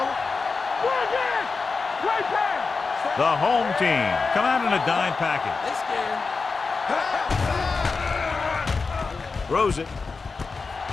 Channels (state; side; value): quieter; right; 4.4 dB